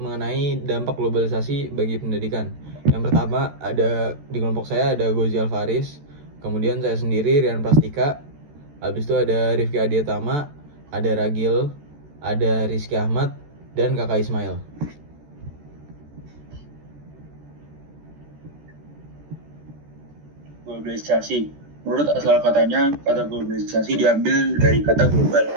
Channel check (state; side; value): late; left; 14 ms